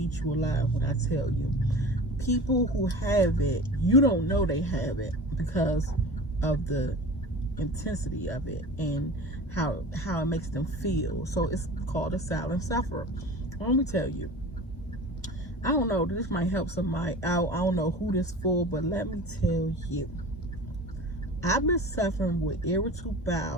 you alive when I tell you. People who have it, you don't know they have it because of the intensity of it and how it makes them feel. So it's called a silent sufferer. Let me tell you, I don't know, this might help somebody out. I don't know who this for, but let me tell you, I've been suffering with irritable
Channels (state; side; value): normal; both; correlation 0.36